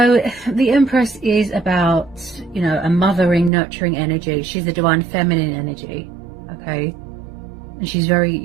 the Empress is about, you know, a mothering, nurturing energy. She's the divine feminine energy, okay? And she's very,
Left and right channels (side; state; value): left; drops out; at 3.5 s